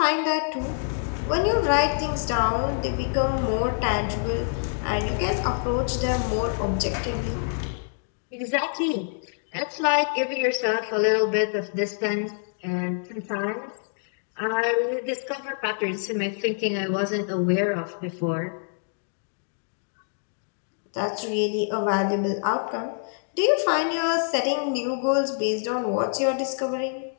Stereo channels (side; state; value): right; silent; digital silence